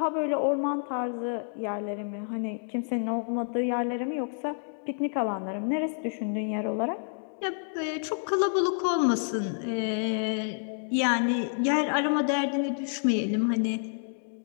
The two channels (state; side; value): silent; right; digital silence